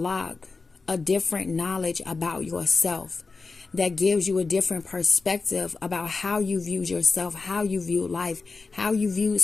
a different knowledge about yourself, that gives you a different perspective about how you view yourself, how you view life, how you view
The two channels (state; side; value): quieter; right; 4.1 dB